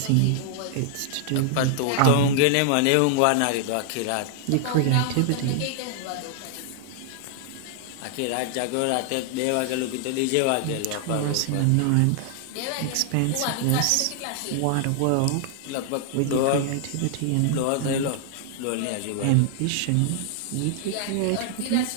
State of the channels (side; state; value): both; different; correlation 0.00